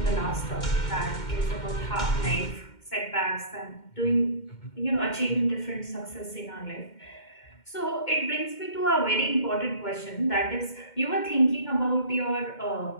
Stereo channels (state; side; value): late; right; 2.1 ms